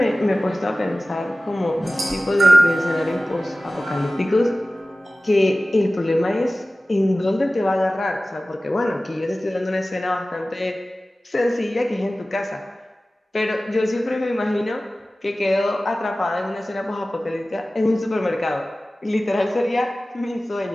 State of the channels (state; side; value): normal; both; correlation 0.97